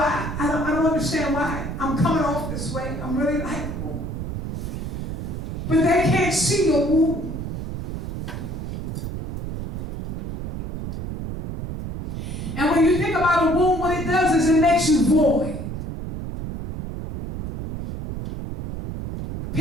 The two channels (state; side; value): noise; right; rumble, 6 dB below the sound